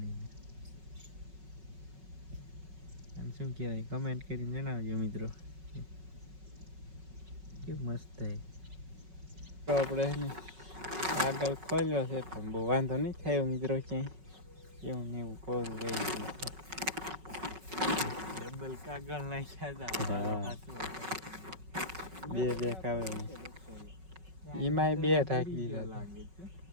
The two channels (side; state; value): left; late; 5.4 ms